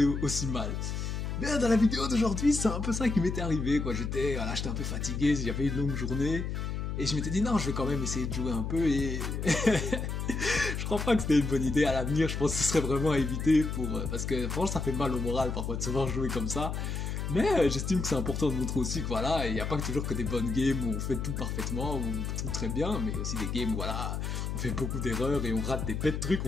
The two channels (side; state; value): left; noise; hum, 3 dB below the sound